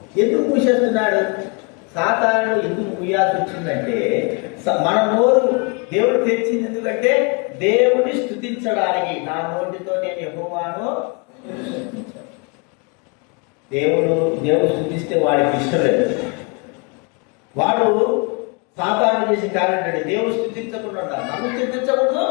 ఎందుకు మూసేస్తున్నాడు? సాతాను ఎందుకు మూయాల్సి వచ్చిందంటే మన నోరు దేవుడు తెరిచింది ఎందుకంటే దేవుడిని స్తుతించడానికి. నా నోటితో నేను యెహోవాను దేవుడు స్తుతిస్తే వాడికి ఇష్టం లేదు. వాడు సాతాను చేసే కార్యం ఏంటంటే దేవుడు స్తుతించకుండా ఉండాలి. నన్ను స్తుతించకూడదు,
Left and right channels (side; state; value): right; quieter; 33.3 dB